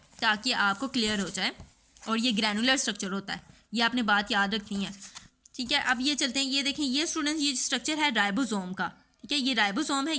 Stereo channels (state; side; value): identical; both; correlation 1.00